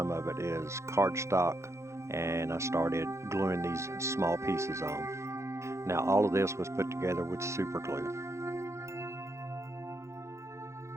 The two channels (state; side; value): late; left; 0.14 ms